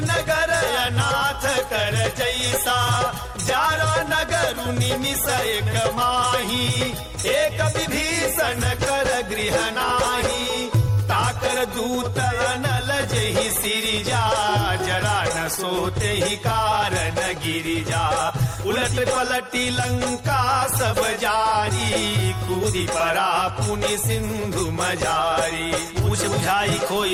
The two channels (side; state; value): both; identical; correlation 1.00